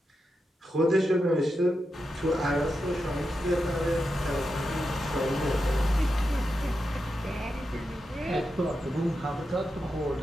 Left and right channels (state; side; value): normal; both; correlation 0.88